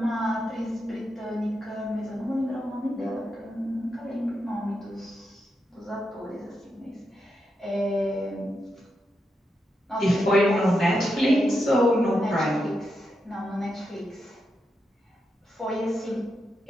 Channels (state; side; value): normal; both; correlation 0.85